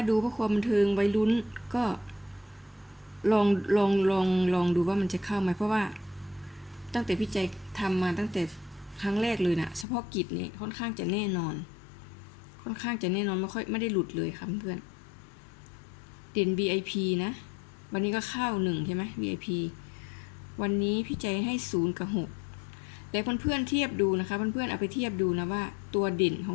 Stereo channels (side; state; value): right; drops out; at 9.9 s